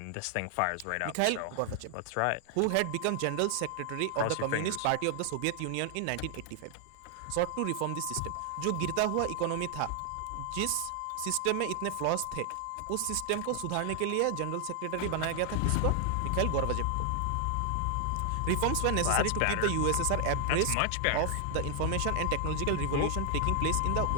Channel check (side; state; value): both; different; correlation 0.00